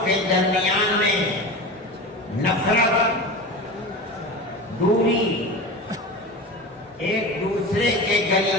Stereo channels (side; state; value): both; normal; correlation 0.29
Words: کے درمیان میں نفرت، دوری، ایک دوسرے کے